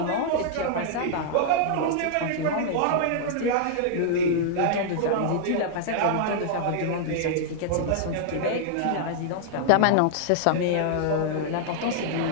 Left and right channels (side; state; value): both; different; correlation -0.01